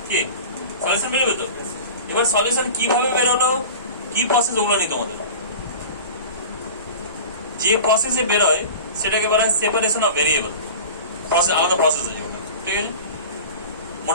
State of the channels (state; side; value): inverted; both; correlation -0.35